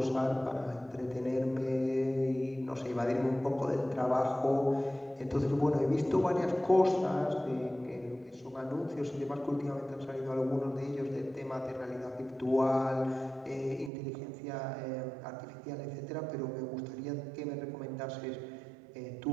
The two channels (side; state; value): left; drops out; at 13.9 s